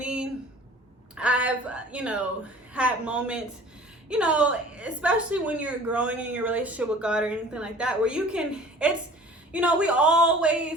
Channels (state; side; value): normal; both; correlation 0.46